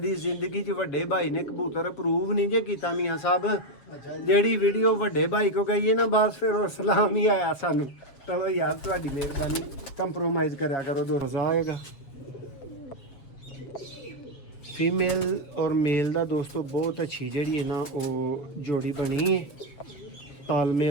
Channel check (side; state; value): right; late; 7.3 ms